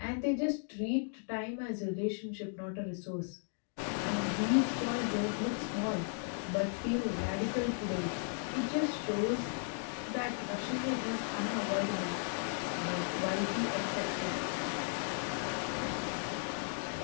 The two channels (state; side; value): silent; right; 54 dB below the other